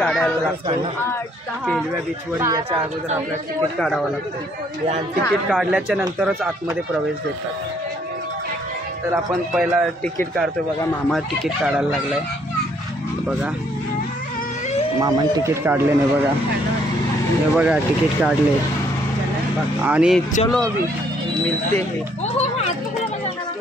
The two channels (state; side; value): normal; both; correlation 0.67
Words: लागतं केलव्या बीचवर. याच्या अगोदर आपल्याला तिकीट काढावं लागतं. तिकीट काढल्याच्या नंतरच आतमध्ये प्रवेश देतात. तर आपण पहिला तिकीट काढतोय बघा. मामा तिकीट काढायला लागलाय बघा. मामाने तिकीट काढले नाही बघा. हे बघा तिकीट काढले आणि चलो अभी मिलते हे.